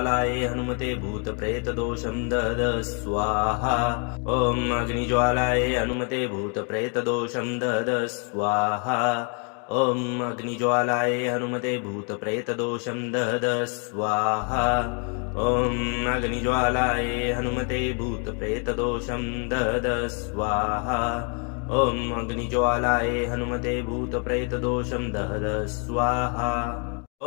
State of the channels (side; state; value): right; quieter; 38.9 dB